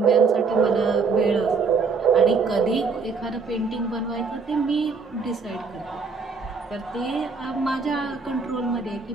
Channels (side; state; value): left; quieter; 4.9 dB